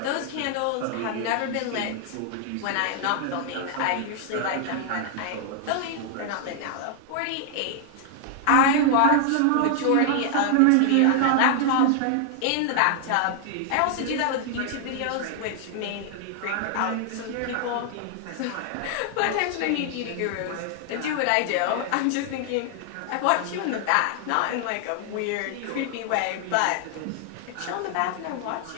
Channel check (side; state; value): both; different; correlation 0.00